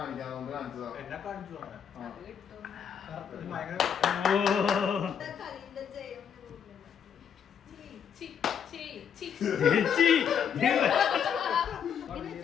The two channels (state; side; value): quieter; right; 7.9 dB